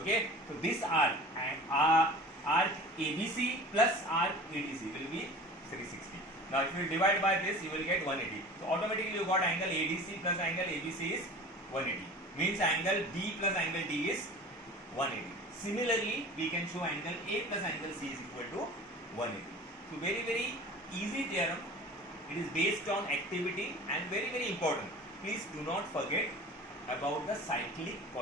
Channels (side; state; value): both; normal; correlation 0.39